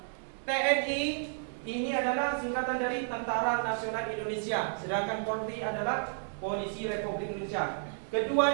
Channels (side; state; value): left; silent; digital silence